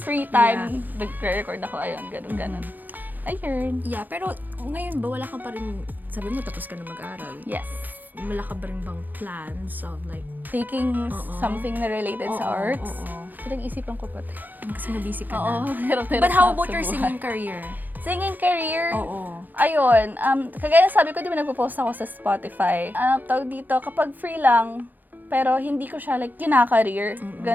time, nag-record ako. Ayun, ganun. Ayun. Yeah, pero ngayon ba wala ka pa rin, sabi mo tapos ka na mag-aral. Yes. Wala ka ba rin bang plans of like, Taking something na related sa arts. Pinag-isipan ko pa. kasi na-busy ka Oo, na. hirap-hirap But how na about sa your buhay. singing career? Singing career? Oo. Ayun, kagaya sabi ko, di ba nagpo-post ako sa Spotify. Tawag dito, kapag free lang, pero hindi ko siya like kina-career,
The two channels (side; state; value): left; late; 0.085 ms